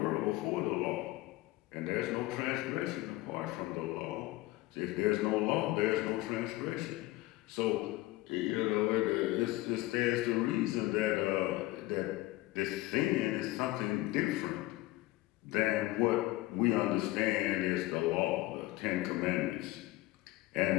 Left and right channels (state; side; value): quieter; right; 18.6 dB